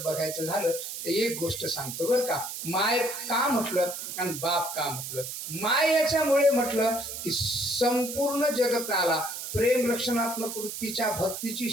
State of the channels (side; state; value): right; noise; hiss, 7 dB below the sound